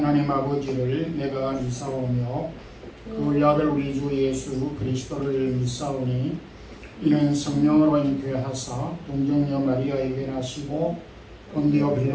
아버지를 내가 믿사오며 그 아들 우리 주 예수 그리스도를 믿사오니 이는 성령으로 잉태하사 동정녀 마리아에게 나시고 본디오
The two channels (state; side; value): identical; both; correlation 1.00